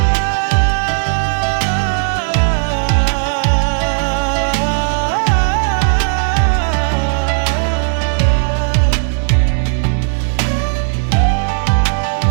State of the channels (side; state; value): left; silent; digital silence